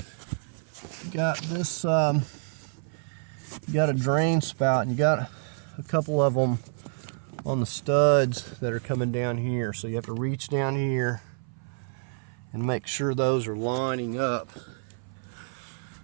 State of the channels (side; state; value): left; silent; 57 dB below the other